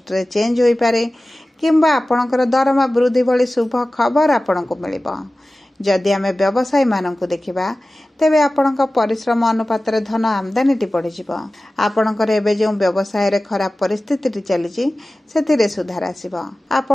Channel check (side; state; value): both; normal; correlation 0.96